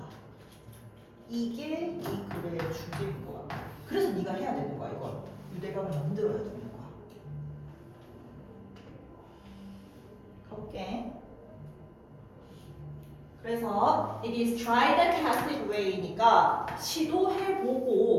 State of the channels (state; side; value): identical; both; correlation 1.00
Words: 이게 이 글의 주제인 것 같아. 그래서 네가 해야 되는 거야, 이걸. 유대감을 만들어야 되는 거야. 가볼게. 그래서 it is tried and tested way니까